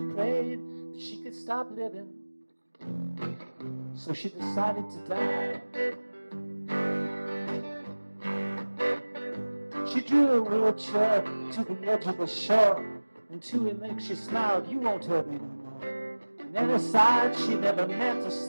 prayed that she could stop living. So she decided to die. She drew a wheelchair to the edge of the shore, and to her legs she smiled, "You won't hurt me no more." And then aside she never meant to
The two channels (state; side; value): inverted; both; correlation -1.00